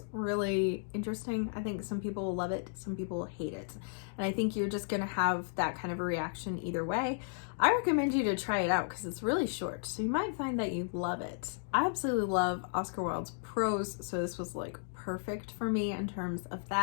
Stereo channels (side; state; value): right; silent; digital silence